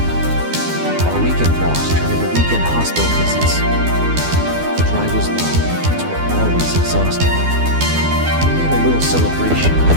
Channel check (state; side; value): late; left; 12 ms